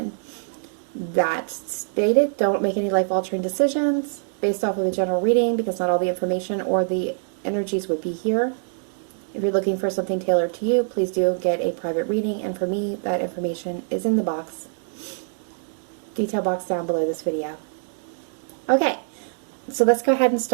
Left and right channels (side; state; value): left; silent; digital silence